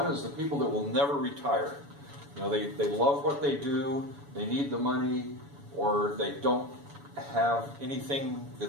is the people that will never retire. You know, they love what they do, they need the money, or they don't have anything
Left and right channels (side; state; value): left; late; 7.1 ms